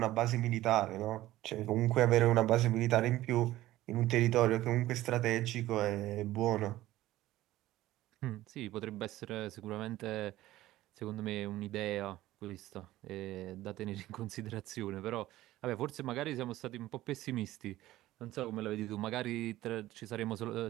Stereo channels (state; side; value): quieter; left; 15.7 dB